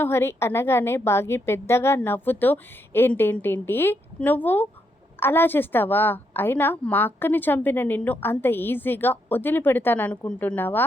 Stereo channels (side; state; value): both; normal; correlation 0.78